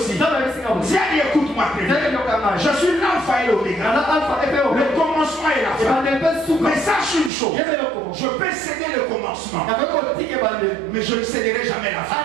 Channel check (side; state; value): left; drops out; at 7.3 s